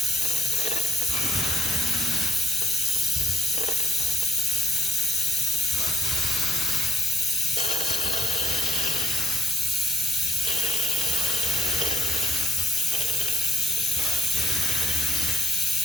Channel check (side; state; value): both; normal; correlation 0.81